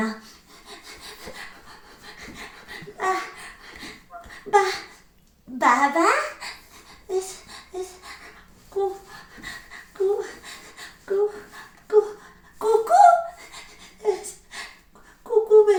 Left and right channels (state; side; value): identical; both; correlation 1.00